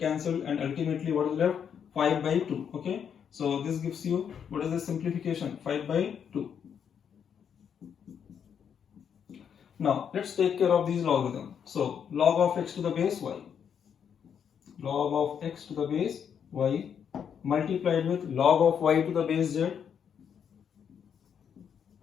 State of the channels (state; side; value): quieter; right; 7.8 dB